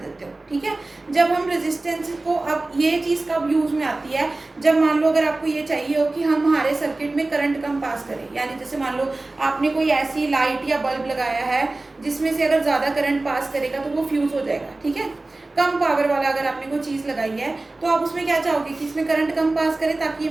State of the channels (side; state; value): left; quieter; 3.0 dB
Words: हो। ठीक है, जब हम रेजिस्टेंस को, अब ये चीज़ कब यूज में आती है, जब मान लो अगर आपको ये चाहिए हो कि हम हमारे सर्किट में करंट कम पास करें, यानी जैसे मान लो आपने कोई ऐसी लाइट या बल्ब लगाया है जिसमें से अगर ज़्यादा करंट पास करेगा तो वो फ्यूज हो जाएगा। ठीक है, कम पावर वाला अगर आपने कोई चीज़ लगाई है तो आप उसमें क्या चाहोगे कि इसमें करंट कम पास करे ताकि ये